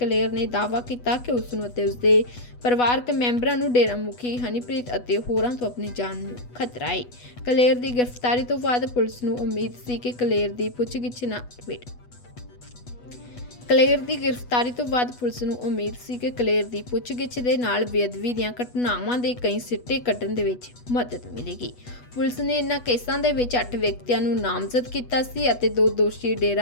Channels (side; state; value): right; late; 8.2 ms